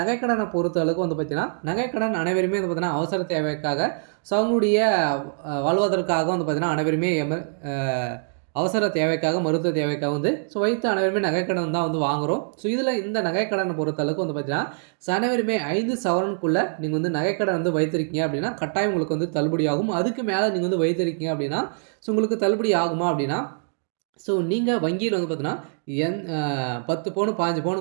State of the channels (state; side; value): silent; left; digital silence